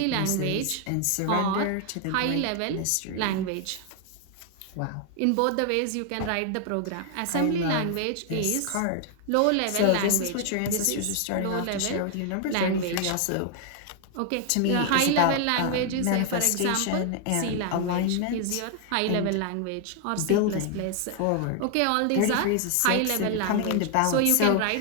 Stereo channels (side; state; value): both; different; correlation 0.00